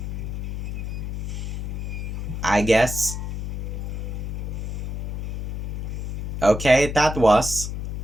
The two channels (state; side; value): noise; left; hum, 4 dB below the sound